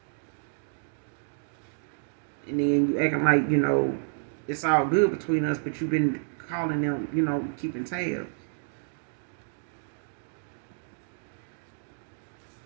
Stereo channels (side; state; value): left; silent; digital silence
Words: And then you acting like, it's all good between us, but you've been calling them, keeping tabs.